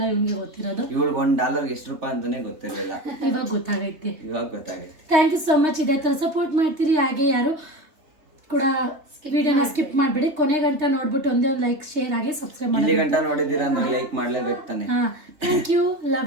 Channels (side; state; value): left; late; 3.5 ms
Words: ಇವ್ನಿಗೆ ಗೊತ್ತಿರೋದು. ಇವಳು $1 ಎಷ್ಟು ರೂಪಾಯಿ ಅಂತಾನೆ ಗೊತ್ತಿರಲಿಲ್ಲ, ಇವಾಗ ಗೊತ್ತಾಗೈತೆ. Thank you so much. ಇದೇ ಥರ ಸಪೋರ್ಟ್ ಮಾಡ್ತೀರಿ. ಹಾಗೆ ಯಾರು ಕೂಡ ವಿಡಿಯೋನ ಸ್ಕಿಪ್ ಮಾಡಬೇಡಿ, ಕೊನೆ ಗಂಟ ನೋಡ್ಬಿಟ್ಟು ಒಂದೇ ಒಂದು ಲೈಕ್, ಶೇರ್ ಆಗಿ ಸಬ್ಸ್ಕ್ರೈಬ್ ಮಾಡಿ. ಇಲ್ಲಿ ಗಂಟ ನೋಡಿದ್ದೀರಾ ಅಂದ್ರೆ ಲೈಕ್ ಮಾಡ್ಲೇಬೇಕು ತಾನೆ. Thank you,